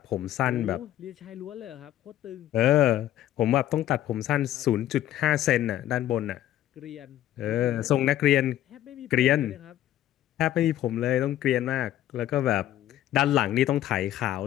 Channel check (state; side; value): quieter; right; 12.8 dB